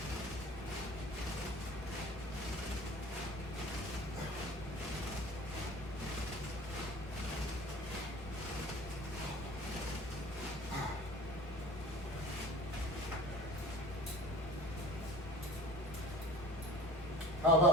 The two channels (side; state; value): both; normal; correlation 0.42